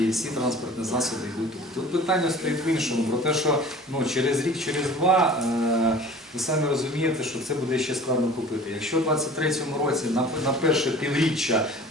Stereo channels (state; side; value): normal; both; correlation 0.44